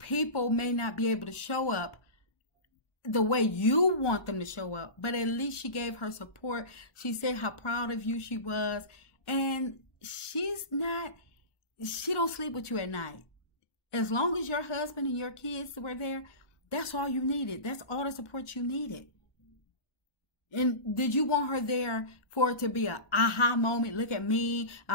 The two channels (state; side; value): late; right; 1.2 ms